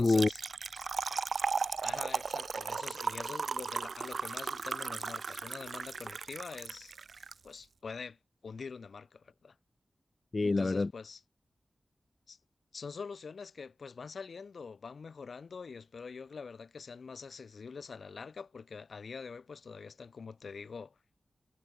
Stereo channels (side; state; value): both; normal; correlation 0.91